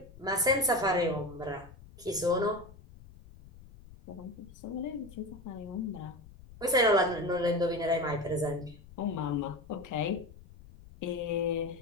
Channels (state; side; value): noise; left; rumble, 20 dB below the sound